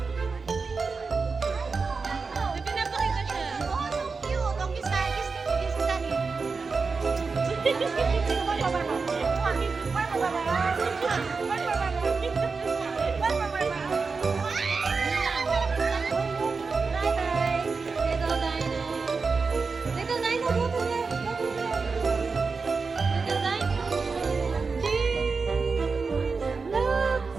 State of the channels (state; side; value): quieter; left; 4.6 dB